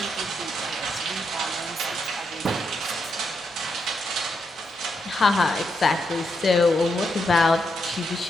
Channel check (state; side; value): normal; both; correlation 0.81